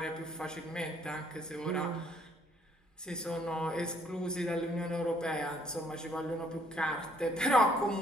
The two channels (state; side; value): normal; both; correlation 0.64